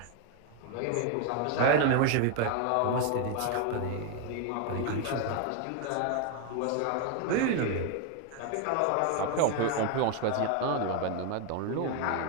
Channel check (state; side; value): different; both; correlation 0.01